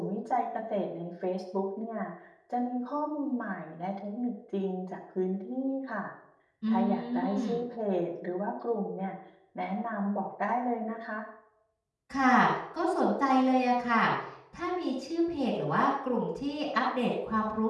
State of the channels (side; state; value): both; identical; correlation 1.00